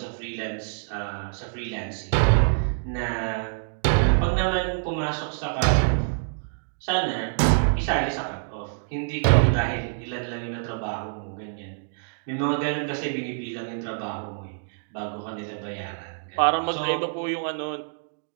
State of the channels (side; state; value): left; silent; digital silence